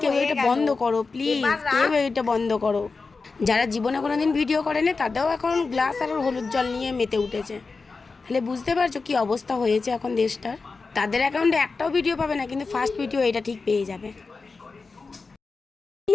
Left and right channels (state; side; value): quieter; right; 4.3 dB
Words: কেউ হয়ে এটা গেল। বন্ধ করো, প্লিজ এবার কেউ রাখ। এটা বন্ধ করো। যারা জীবনে কোনোদিন ভিডিও করেনি তাদেরও এখন গ্লাস আর হলুদ জল নিয়ে মেতে উঠেছে। তাহলে বুঝতে পারছো কি অবস্থা হয়েছে এখন দেশটার। তাদের অ্যাকাউন্টে একটাও ভিডিও পাবে না, কিন্তু ফার্স্ট ভিডিও এটা ঠিক পেয়ে যাবে।